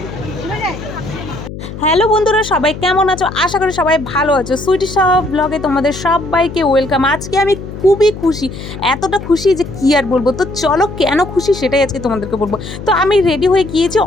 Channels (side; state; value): left; noise; hum, 11 dB below the sound